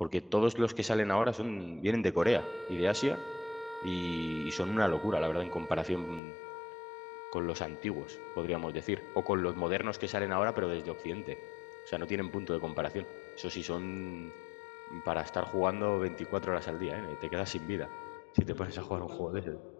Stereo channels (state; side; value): drops out; right; at 6.2 s